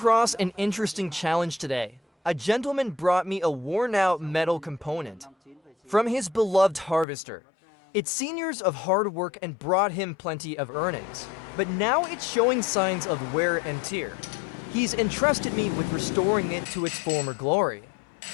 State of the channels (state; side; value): drops out; right; at 7.1 s